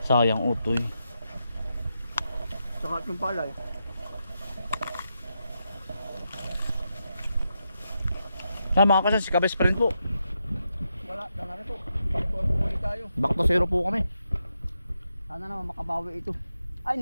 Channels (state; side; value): inverted; both; correlation -0.85